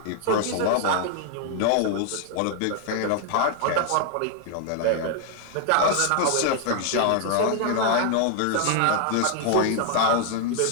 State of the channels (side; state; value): both; different; correlation 0.00